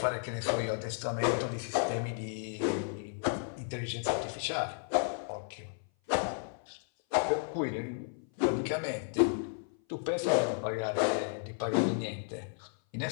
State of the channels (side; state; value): right; silent; 56 dB below the other